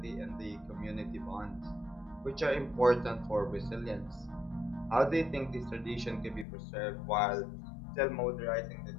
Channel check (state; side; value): drops out; right; at 6.5 s